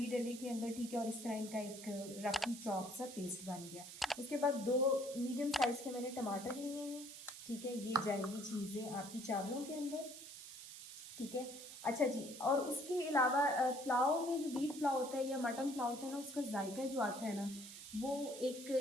डले के अंदर। ठीक है, और इस तरह इनका एक रफी चॉप सा पेस्ट बन गया। उसके बाद 2 मीडियम साइज़ के मैंने टमाटर लिए हैं। ठीक है, ये जाएंगी चीज़ें आपकी चावलों के अंदर। ठीक है, अच्छा जी, और उसके अलावा पुलाव में जो बीफ पुलाव होता है या मटन पुलाव होता है ना, उसका जायका जो आता है ना, वो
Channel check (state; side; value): noise; right; hiss, 12 dB below the sound